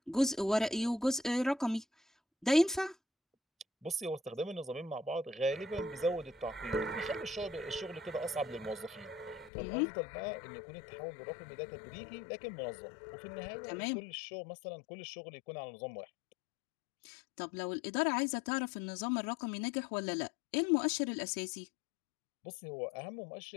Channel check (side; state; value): right; drops out; at 9.5 s